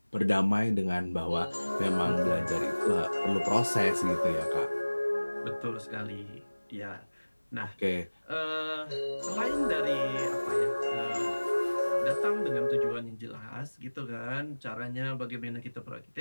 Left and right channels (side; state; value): both; inverted; correlation -1.00